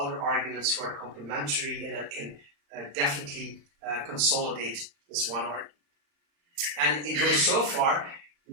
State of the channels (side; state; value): left; late; 35 ms